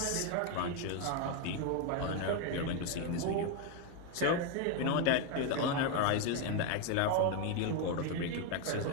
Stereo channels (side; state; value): both; different; correlation 0.01